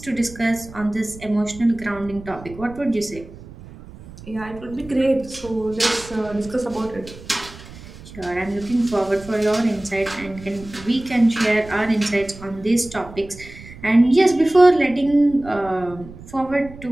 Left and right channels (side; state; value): right; noise; rumble, 17 dB below the sound